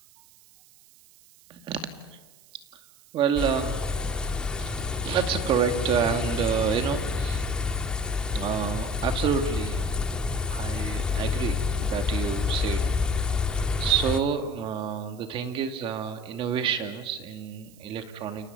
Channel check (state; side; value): noise; right; hiss, 27 dB below the sound